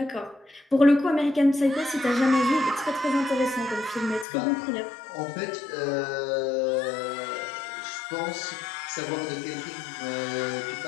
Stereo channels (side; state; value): right; drops out; at 4.2 s